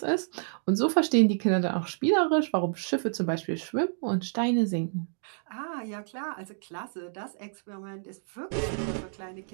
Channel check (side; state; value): left; silent; digital silence